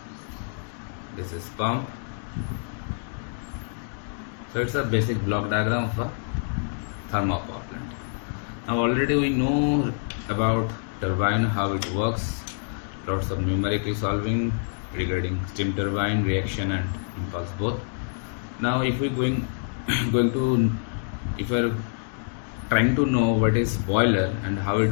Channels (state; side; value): silent; right; digital silence